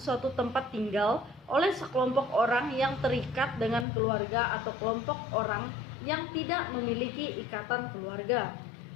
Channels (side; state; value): right; drops out; at 3.9 s